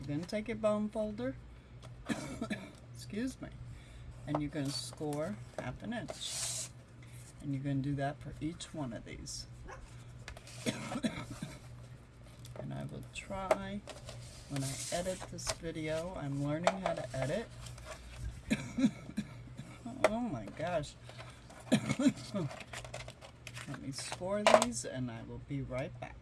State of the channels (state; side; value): identical; both; correlation 1.00